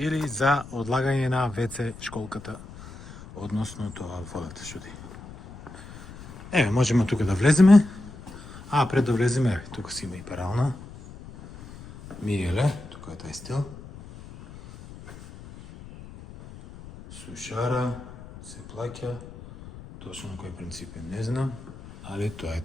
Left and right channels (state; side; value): noise; left; rumble, 16 dB below the sound